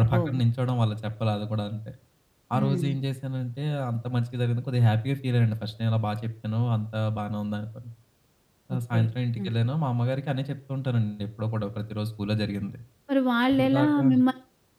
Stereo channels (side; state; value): both; identical; correlation 1.00